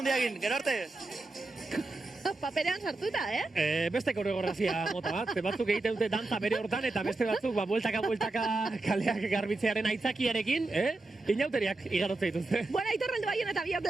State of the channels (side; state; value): left; quieter; 3.1 dB